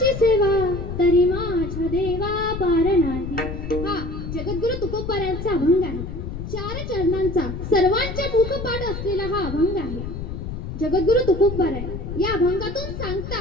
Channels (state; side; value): noise; left; rumble, 7 dB below the sound